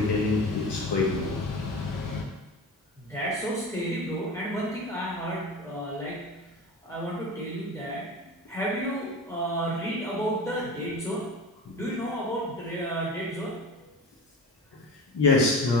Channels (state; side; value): normal; both; correlation 0.32